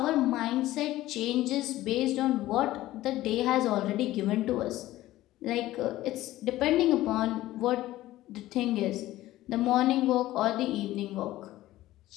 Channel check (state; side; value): quieter; right; 15.8 dB